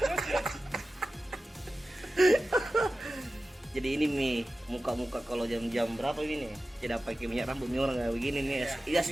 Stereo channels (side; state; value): both; normal; correlation 0.94